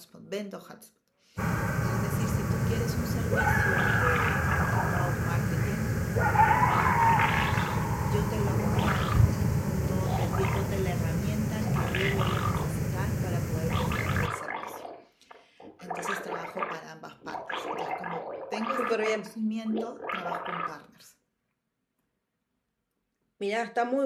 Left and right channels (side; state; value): both; identical; correlation 1.00